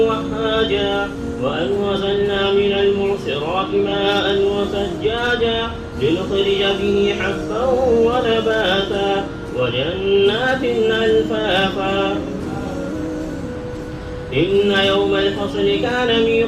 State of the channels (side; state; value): both; identical; correlation 1.00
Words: وأنزلنا من المعصرات ماء وثجاجا لنخرج به حبا ونباتا وجنات ألفافا إن يوم الفصل كان